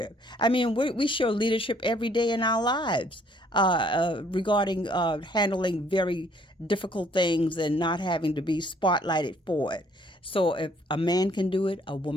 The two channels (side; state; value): both; normal; correlation 0.62